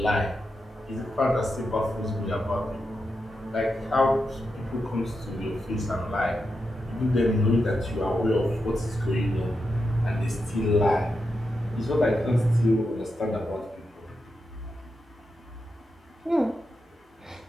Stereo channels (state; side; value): normal; both; correlation 0.87